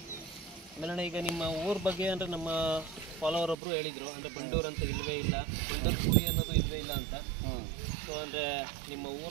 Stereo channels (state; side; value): drops out; left; at 3.6 s